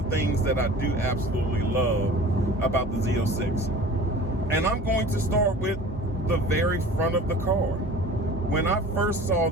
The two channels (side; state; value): both; normal; correlation 0.42